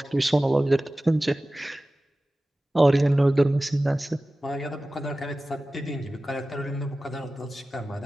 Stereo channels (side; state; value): both; normal; correlation 0.96